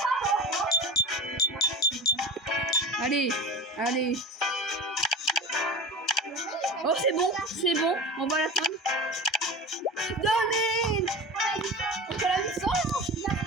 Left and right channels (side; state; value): both; normal; correlation 0.31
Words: Allez, allez. Oh, c'est bon, on va l'atteindre. Donnez! On fait la mission.